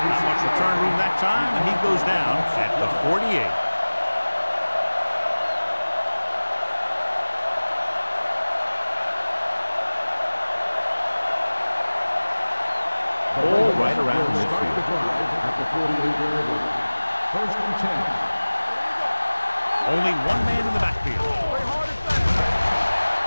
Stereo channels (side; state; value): both; inverted; correlation -1.00